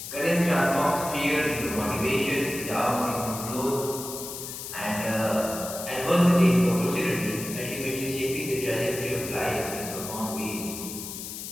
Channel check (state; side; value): noise; left; hiss, 8 dB below the sound